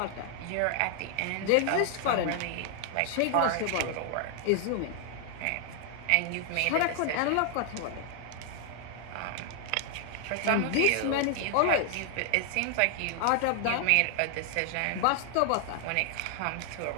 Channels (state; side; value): different; both; correlation 0.00